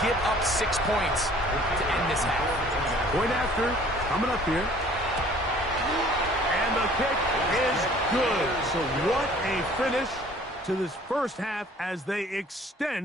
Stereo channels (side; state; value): both; normal; correlation 0.53